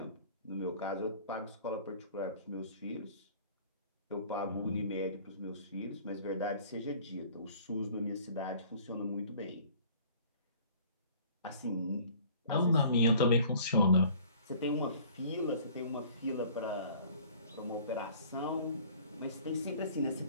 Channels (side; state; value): both; inverted; correlation -0.50